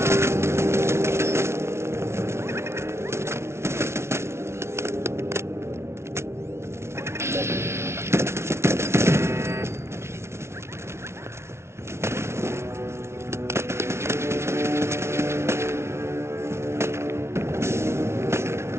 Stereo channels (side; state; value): left; late; 0.13 ms